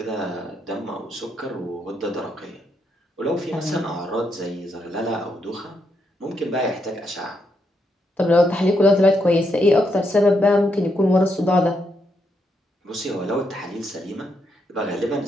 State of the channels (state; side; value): normal; both; correlation 0.80